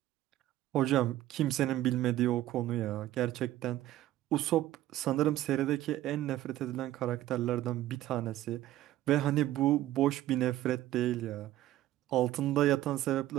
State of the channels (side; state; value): left; quieter; 14.3 dB